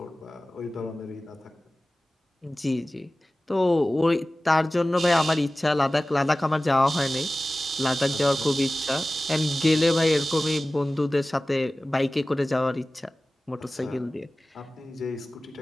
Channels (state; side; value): normal; both; correlation 0.97